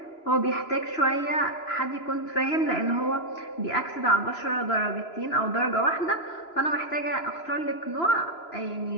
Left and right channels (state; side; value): late; right; 3.0 ms